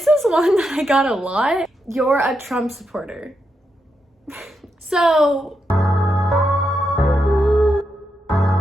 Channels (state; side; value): normal; both; correlation 0.84